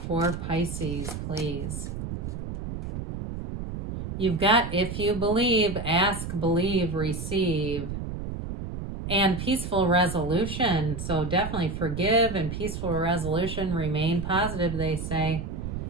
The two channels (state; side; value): noise; right; rumble, 6 dB below the sound